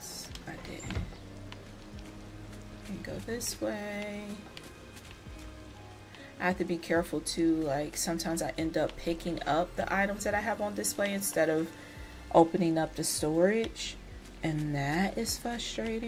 I did. And go this way. I have to be careful too, like sometimes I end up picking up the items that I have on display instead of opening up the storage, and that is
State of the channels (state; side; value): identical; both; correlation 1.00